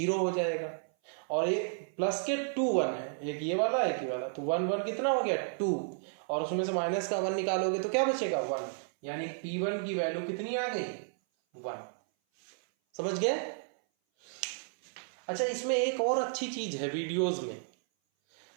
हो जाएगा, और एक प्लस के 2 1 है, एक ये वाला एक ये वाला, तो 1 1 कितना हो गया, 2, और उसमें से माइनस का 1 निकालोगे तो क्या बचेगा, 1, यानी P1 की वैल्यू कितनी आ गई, 1। समझ गए। अच्छा, इसमें एक और अच्छी चीज है वीडियोस में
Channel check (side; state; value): left; silent; 56 dB below the other